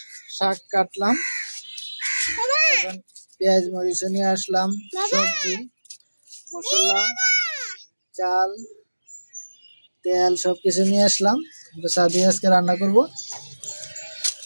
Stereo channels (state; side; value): inverted; both; correlation -1.00